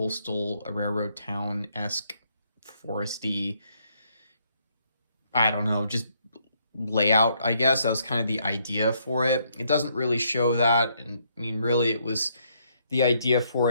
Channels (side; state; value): both; inverted; correlation -0.72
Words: railroad town-esque, foresty, I don't know, just layout, I guess. That was kind of the idea for it. It doesn't really show that. And I mean, really, it was the idea for